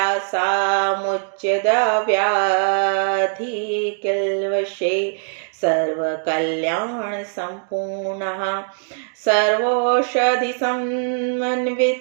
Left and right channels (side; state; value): left; silent; digital silence